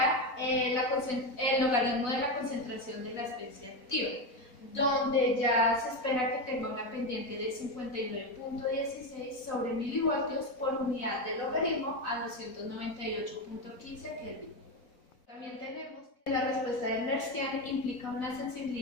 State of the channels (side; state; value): right; late; 4.0 ms